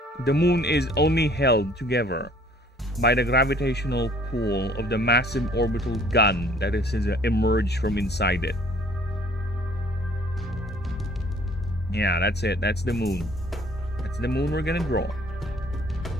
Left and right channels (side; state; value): both; normal; correlation 0.57